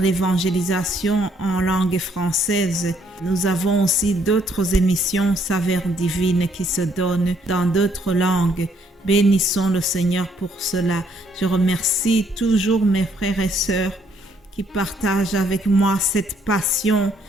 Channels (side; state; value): both; normal; correlation 0.68